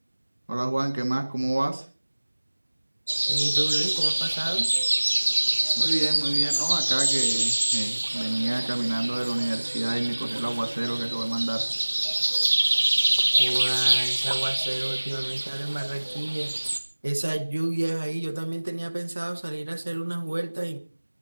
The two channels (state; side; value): inverted; both; correlation -1.00